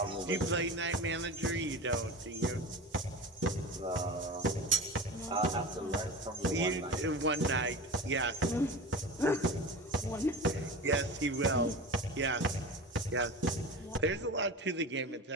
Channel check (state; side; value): normal; both; correlation 0.31